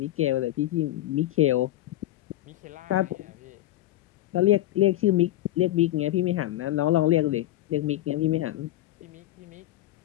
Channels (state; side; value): quieter; right; 14.8 dB